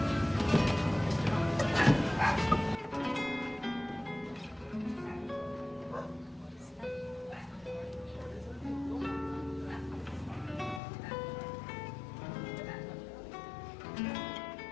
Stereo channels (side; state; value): right; drops out; at 10.8 s